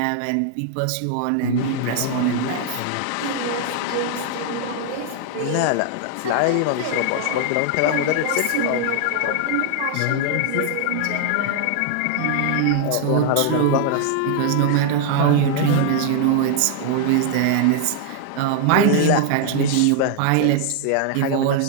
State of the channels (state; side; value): different; both; correlation 0.00